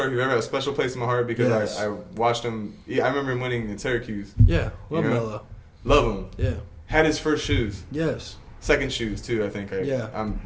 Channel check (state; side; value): identical; both; correlation 1.00